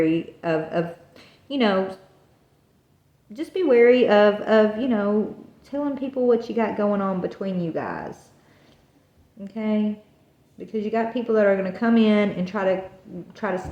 of you know, just be wary of, you know, telling people what you got going on between you guys. Okay, because you got people that are going to come in and try to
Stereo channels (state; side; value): identical; both; correlation 1.00